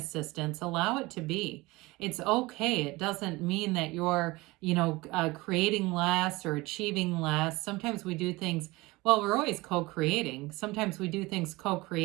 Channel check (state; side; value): quieter; left; 21.8 dB